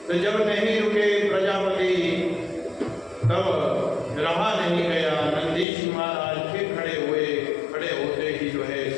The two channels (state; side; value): drops out; right; at 5.7 s